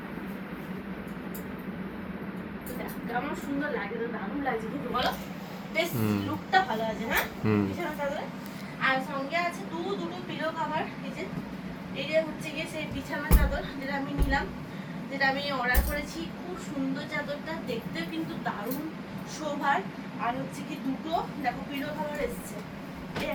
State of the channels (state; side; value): identical; both; correlation 1.00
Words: তো দেখো কেমন সুন্দর লাগে, তো দারুণ লাগছে কিন্তু বলো, বেশ লুকটা ভালো আছে। হ্যাঁ, বিছানা চাদরে আর সঙ্গে আছে দুটো পিলো কভার। এই যে হচ্ছে গিয়ে সেই বিছানা চাদর যেটা আমি নিলাম, যেটা আমি অর্ডার করেছি। খুব সুন্দর চাদরটা, দেখতেও কিন্তু দারুণ শোভার। আর হচ্ছে কি দুটো দেখো পিলো কভার এসছে, এই